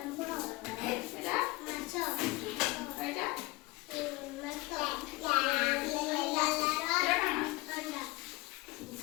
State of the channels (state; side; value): quieter; right; 22.3 dB